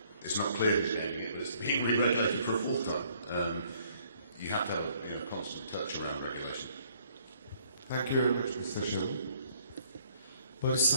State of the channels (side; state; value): both; inverted; correlation -0.63